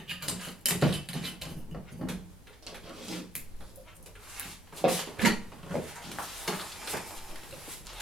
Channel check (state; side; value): normal; both; correlation 0.68